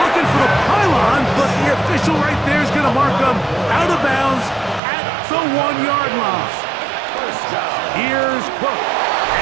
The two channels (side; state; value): left; drops out; at 4.8 s